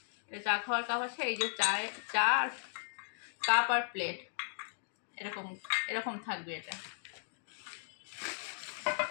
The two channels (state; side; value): silent; right; digital silence